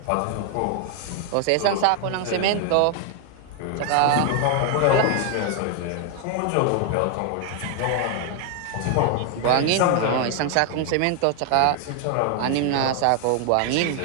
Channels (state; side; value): different; both; correlation 0.00